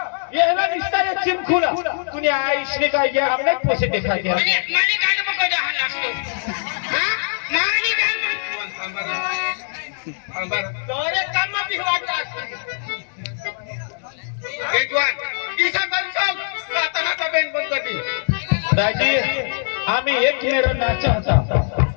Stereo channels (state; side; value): silent; right; digital silence